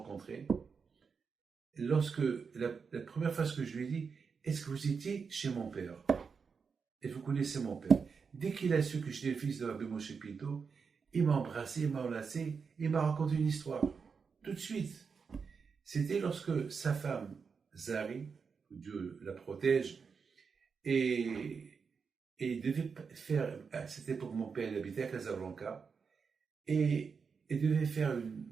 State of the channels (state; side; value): quieter; left; 5.6 dB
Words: Lorsque, la première fois que je lui ai dit, est-ce que vous étiez chez mon père? Et vous connaissez mon père. Dès qu'il a su que j'étais le fils de Rabbi Moshe Pinto, il m'a embrassé, il m'a enlacé, il m'a raconté une histoire. Tout de suite. C'était lorsque sa femme, Zari, que Dieu la protège, et devait faire, à cette époque, mon père il habitait à Casablanca, et devait faire une